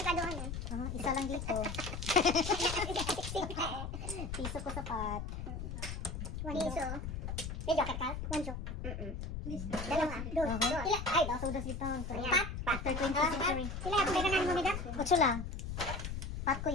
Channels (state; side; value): noise; left; rumble, 5 dB below the sound